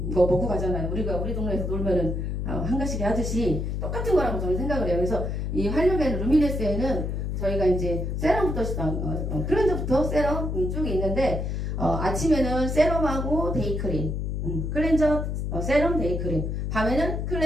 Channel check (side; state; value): left; noise; hum, 2 dB below the sound